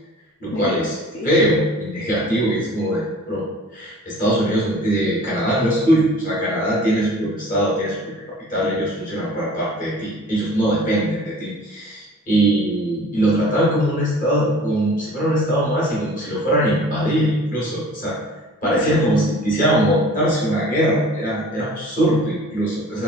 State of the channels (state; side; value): normal; both; correlation 0.46